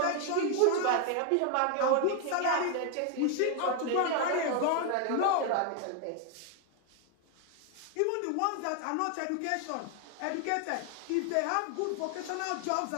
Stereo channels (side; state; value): both; different; correlation 0.00